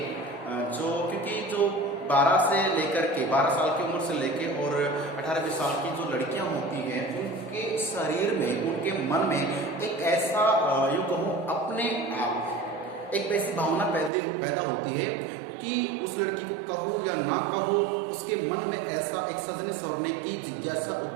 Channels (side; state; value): left; drops out; at 14.1 s